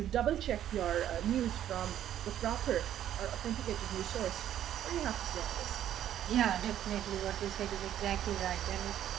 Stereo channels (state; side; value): quieter; left; 11.2 dB